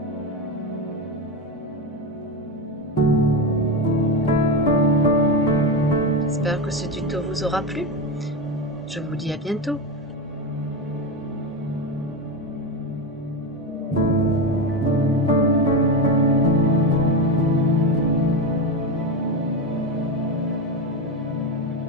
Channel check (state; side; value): normal; both; correlation 0.15